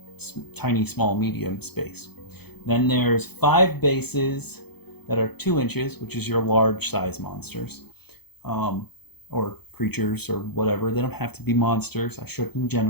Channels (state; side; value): late; right; 0.97 ms